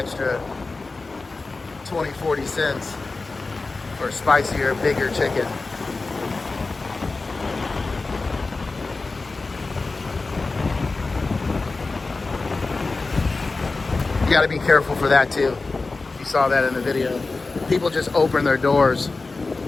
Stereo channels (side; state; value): right; quieter; 3.7 dB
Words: 20-40 cents for spicier, bigger chicken. You gotta be careful for that too. You saw that in the video. People just open their doors